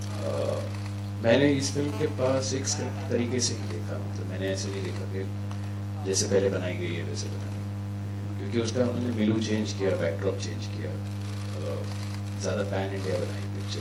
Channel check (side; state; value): both; identical; correlation 1.00